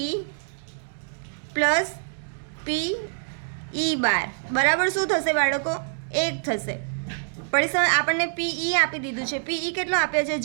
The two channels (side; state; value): left; silent; digital silence